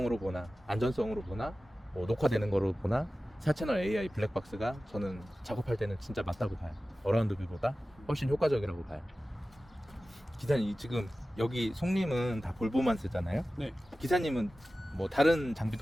보나 안전성으로 보나 뭐 녹화되는 거로 보나 4채널 AI 블랙박스가 저는 작업할 때는 진짜 맞다고 봐요. 어라운드 뷰보다 훨씬 효과적이라고 봐요. 기사님 지금 여기 송님은 다 볼보만 쓰잖아요. 네. 기사님은 뭐 다른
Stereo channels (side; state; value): both; normal; correlation 0.95